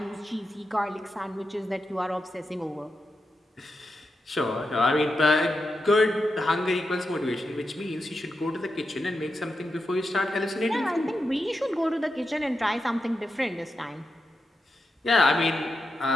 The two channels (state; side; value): normal; both; correlation 0.87